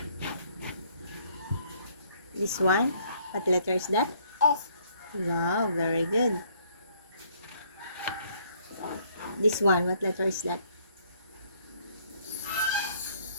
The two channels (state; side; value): inverted; both; correlation -0.65